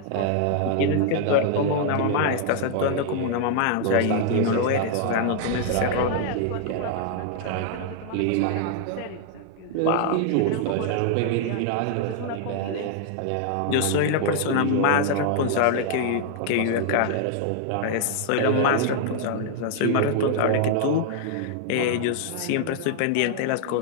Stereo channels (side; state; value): both; different; correlation 0.00